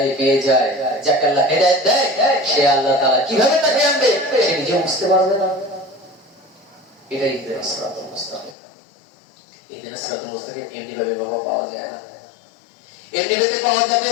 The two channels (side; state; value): right; drops out; at 8.6 s